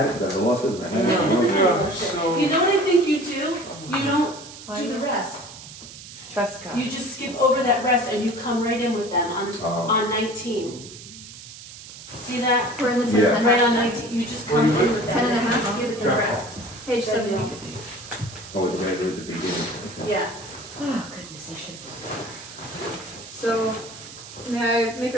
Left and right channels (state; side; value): noise; right; hiss, 15 dB below the sound